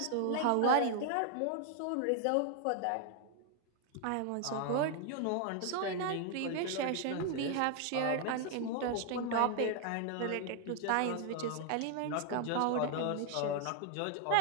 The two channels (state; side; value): different; both; correlation 0.00